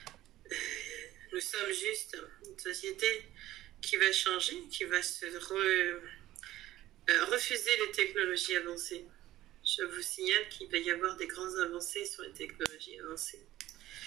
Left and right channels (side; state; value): left; quieter; 15.1 dB